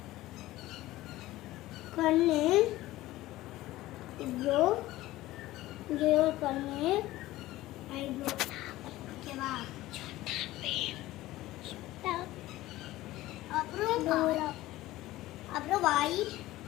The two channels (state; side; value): quieter; right; 16.8 dB